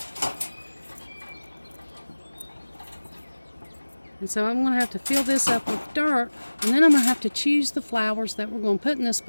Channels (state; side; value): inverted; both; correlation -1.00